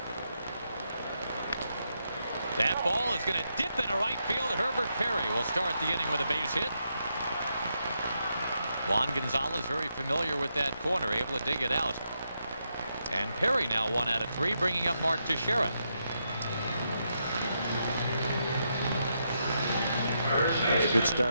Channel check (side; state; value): both; inverted; correlation -0.81